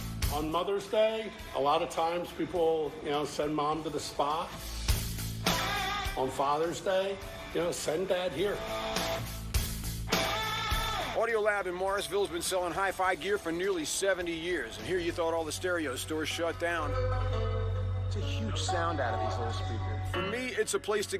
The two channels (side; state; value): both; identical; correlation 1.00